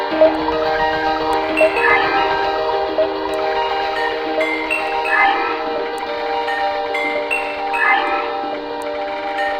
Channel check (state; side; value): identical; both; correlation 1.00